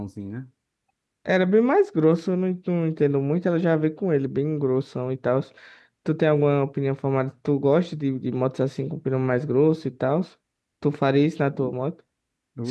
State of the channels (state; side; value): identical; both; correlation 1.00